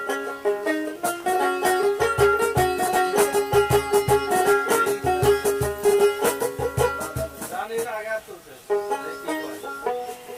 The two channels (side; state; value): both; identical; correlation 1.00